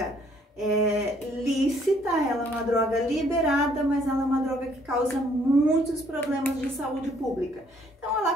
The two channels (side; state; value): both; normal; correlation 0.64